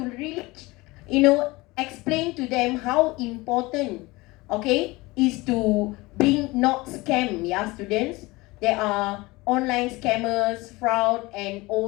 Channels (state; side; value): quieter; right; 22.1 dB